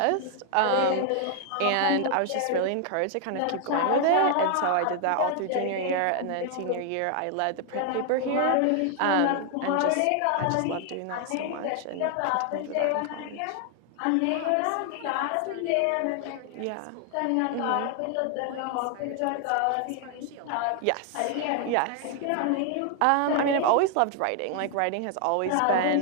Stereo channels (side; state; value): both; different; correlation 0.00